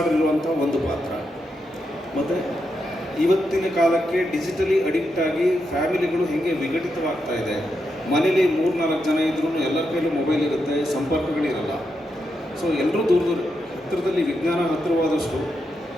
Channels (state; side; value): normal; both; correlation 0.84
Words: ಇರುವಂಥ ಒಂದು ಪಾತ್ರ. ಮತ್ತು ಇವತ್ತಿನ ಕಾಲಕ್ಕೆ ಡಿಜಿಟಲಿ ಅಡಿಕ್ಟ್ ಆಗಿ ಫ್ಯಾಮಿಲಿಗಳು ಹೇಗೆ ವಿಘಟಿತವಾಗ್ತಾ ಇದೆ. ಮನೇಲಿ 3-4 ಜನ ಇದ್ರೂ ಎಲ್ಲರ ಕೈಲೂ ಮೊಬೈಲ್ ಇರುತ್ತೆ, ಸಂಪರ್ಕಗಳಿರಲ್ಲ. ಸೊ ಎಲ್ಲರೂ ಹತ್ತಿರದಲ್ಲಿ ವಿಜ್ಞಾನ ಹತ್ತಿರವಾದಷ್ಟು